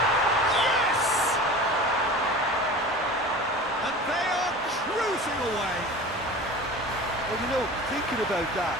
Yes! And they are cruising away. Well, you know, thinking about that,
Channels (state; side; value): normal; both; correlation 0.37